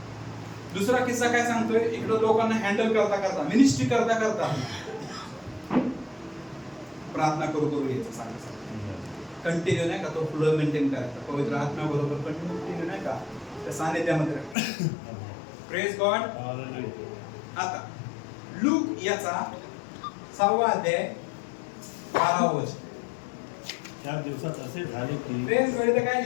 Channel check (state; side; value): drops out; right; at 14.6 s